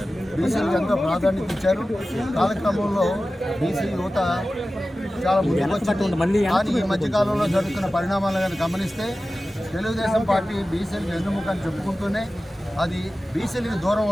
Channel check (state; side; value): normal; both; correlation 0.95